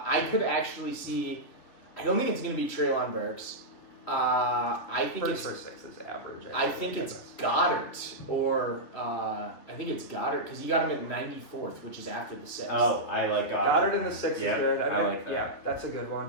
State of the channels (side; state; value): right; late; 3.1 ms